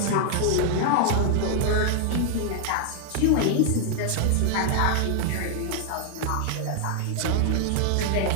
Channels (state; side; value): different; both; correlation 0.00